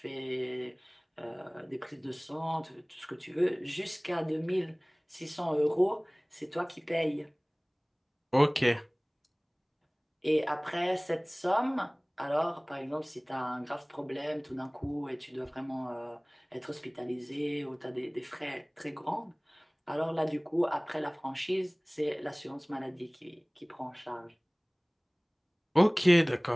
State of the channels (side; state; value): both; identical; correlation 1.00